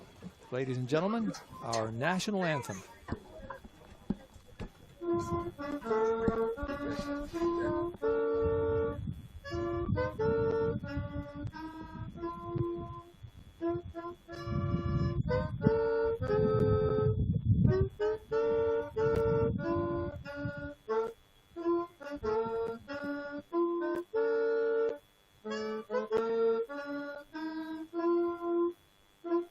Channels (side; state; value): both; identical; correlation 1.00